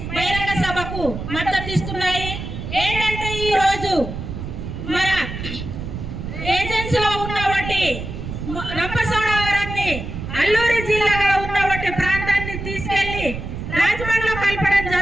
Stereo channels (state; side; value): noise; right; rumble, 7 dB below the sound